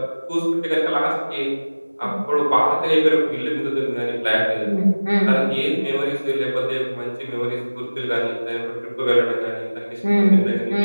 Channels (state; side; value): inverted; both; correlation -1.00